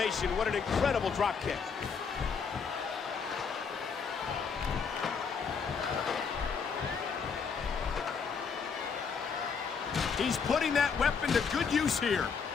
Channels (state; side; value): quieter; right; 5.9 dB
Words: What an incredible drop kick. He's putting that weapon to good use here.